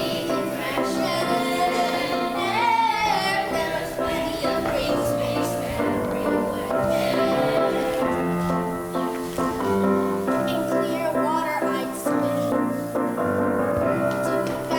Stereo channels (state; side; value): identical; both; correlation 1.00